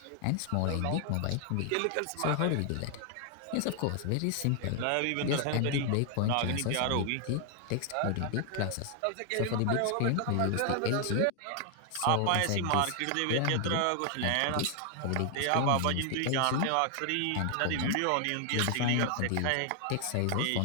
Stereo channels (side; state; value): both; different; correlation 0.00